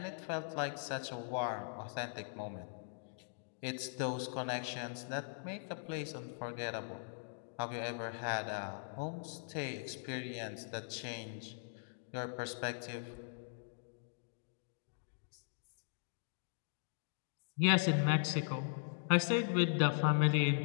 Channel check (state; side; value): silent; right; digital silence